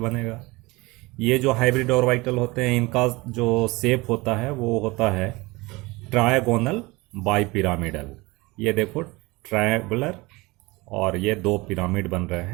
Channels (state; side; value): quieter; left; 22.9 dB